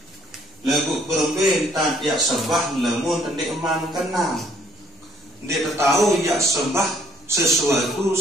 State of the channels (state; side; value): normal; both; correlation 0.64